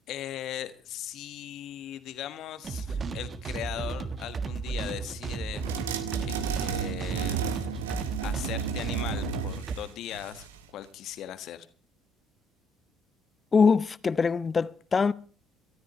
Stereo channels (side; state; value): both; normal; correlation 0.66